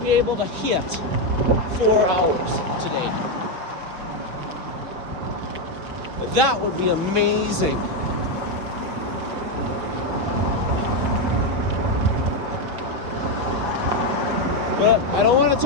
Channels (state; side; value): late; left; 6.1 ms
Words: able to hit 4 hours today. That would be amazing. But I don't want to